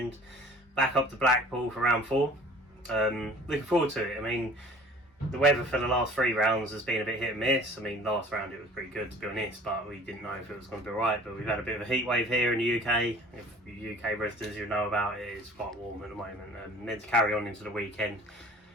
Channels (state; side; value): normal; both; correlation 0.48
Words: Back up to Blackpool for round 4. Looking forward to it. I mean, the weather for the last 3 rounds has been a bit hit and miss. I mean, last round it was pretty good to be honest, but we didn't know if it was going to be right. But we've had a bit of a heat wave here in the UK. If you UK residents, you know about it, it's quite warm at the moment and meant to carry on into the weekend.